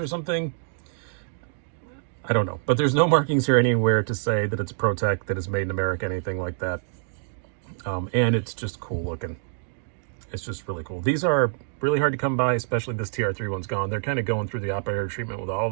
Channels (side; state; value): left; silent; digital silence